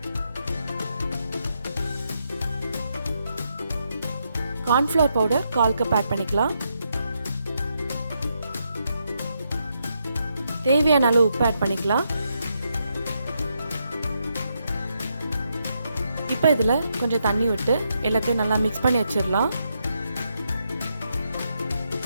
கார்ன்ஃப்ளவர் பவுடர் 1/4 கப் ஆட் பண்ணிக்கலாம். தேவையான அளவு உப்பு ஆட் பண்ணிக்கலாம். இப்போ இதில் கொஞ்சம் தண்ணி விட்டு எல்லாத்தையும் நல்லா மிக்ஸ் பண்ணி வச்சிடலாம்.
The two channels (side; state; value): both; inverted; correlation -0.80